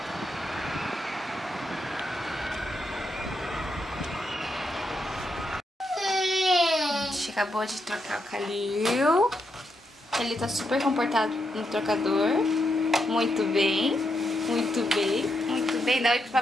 acabou de trocar o Calil. Ele tá super comportado no trocador. Muito bem. Muito bem. Muito bem. Dá oi pro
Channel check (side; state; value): both; normal; correlation 0.82